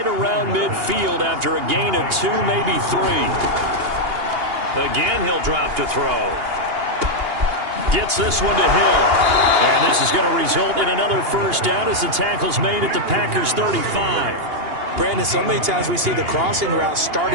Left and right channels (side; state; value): left; late; 2.8 ms